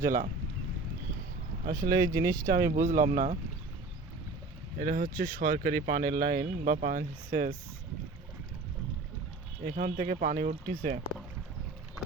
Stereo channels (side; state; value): left; quieter; 3.4 dB